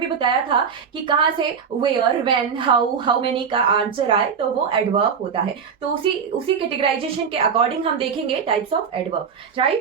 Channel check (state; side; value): quieter; left; 6.7 dB